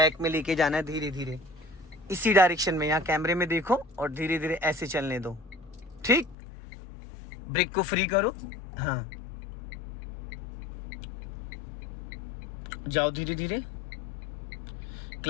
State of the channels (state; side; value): drops out; right; at 6.4 s